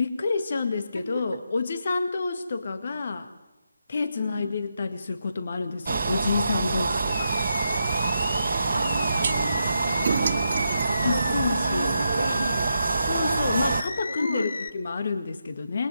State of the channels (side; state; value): both; inverted; correlation -0.83